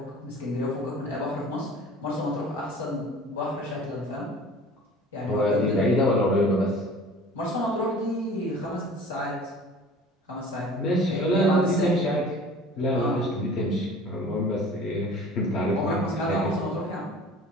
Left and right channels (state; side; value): normal; both; correlation 0.45